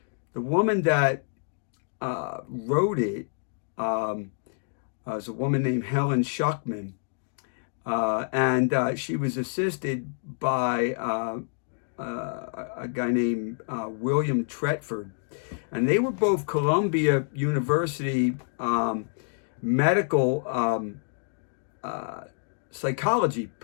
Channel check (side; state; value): right; silent; digital silence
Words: the woman that wrote it was a woman named Helen Schuckman. And she was assisted by a guy named William Tretford. And they were both Columbia University medical psychology